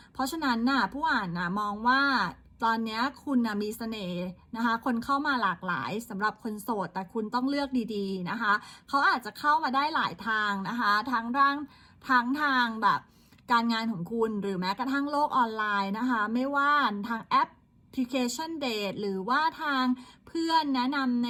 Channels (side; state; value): both; identical; correlation 1.00